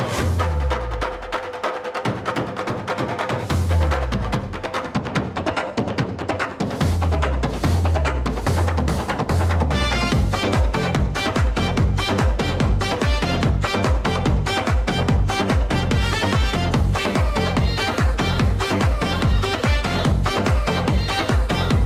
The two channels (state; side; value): identical; both; correlation 1.00